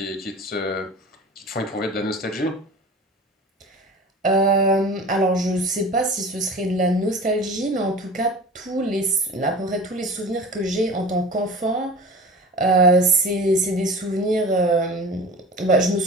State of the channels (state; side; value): normal; both; correlation 0.38